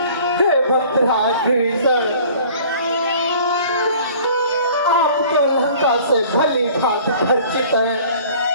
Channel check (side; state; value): both; inverted; correlation -0.49